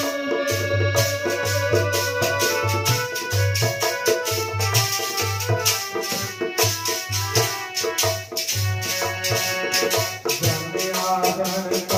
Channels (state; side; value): identical; both; correlation 1.00